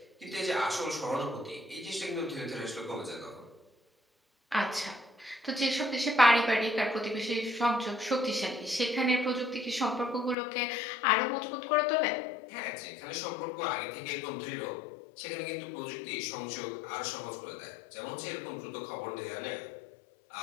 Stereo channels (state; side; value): drops out; right; at 10.4 s